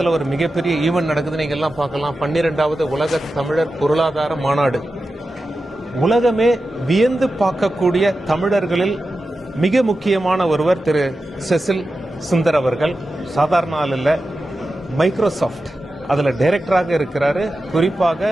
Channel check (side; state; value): both; normal; correlation 0.92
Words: ஒரு மிகப்பெரிய ஈவெண்ட் நடக்குது. நீங்கள் எல்லாம் பார்க்கலாம். 12வது உலக தமிழர் பொருளாதார மாநாடு. உலகமே வியந்து பார்க்கக்கூடிய தமிழர்களில் மிக முக்கியமான ஒருவர் திரு செசில் சுந்தர் அவர்கள். சாதாரண ஆள் இல்லை. மைக்ரோசாஃப்ட் அதில் டைரக்டராக இருக்கிறாரு.